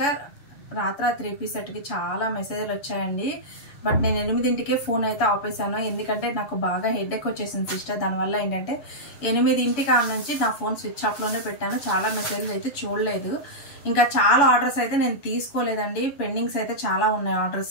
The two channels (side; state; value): right; late; 7.1 ms